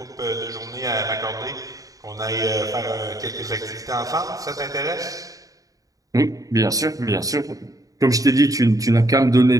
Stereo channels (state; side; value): late; left; 0.17 ms